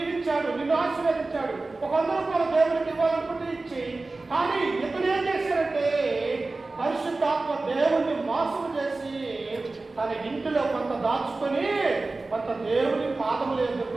నిన్ను ఆశీర్వదించాడు, ఒక 100 రూపాయలు దేవుడికి ఇవ్వాలనుకుంటే ఇచ్చి. కానీ ఇతను ఏం చేశారంటే పరిశుద్ధాత్మ దేవుడిని మోసం చేసి తన ఇంటిలో కొంత దాచుకొని కొంత దేవుని పాదముల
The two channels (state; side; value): quieter; left; 3.4 dB